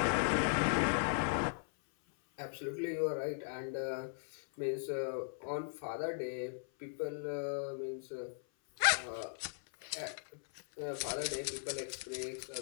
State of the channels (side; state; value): right; silent; 52 dB below the other